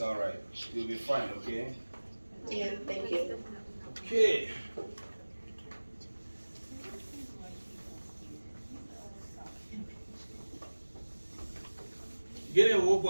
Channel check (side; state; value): both; inverted; correlation -1.00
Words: all right. You'll be fine. Okay. Yeah. Thank you. Okay. Get a